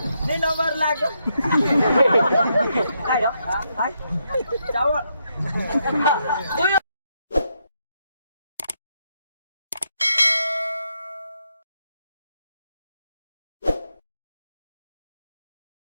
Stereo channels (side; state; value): both; inverted; correlation -0.79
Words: नंबर लाग काय जावं